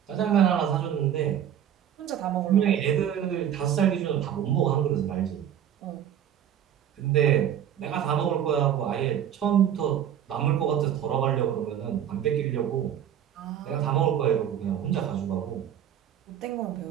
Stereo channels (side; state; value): left; quieter; 9.9 dB